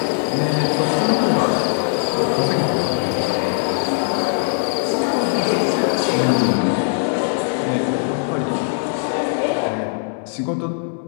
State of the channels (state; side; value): silent; right; 62 dB below the other